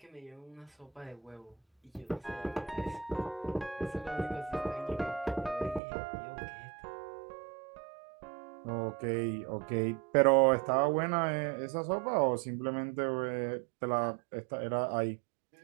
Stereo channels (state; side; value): drops out; left; at 5.8 s